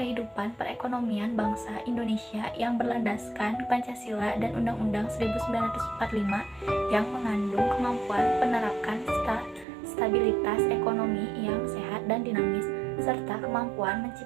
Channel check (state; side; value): drops out; left; at 9.7 s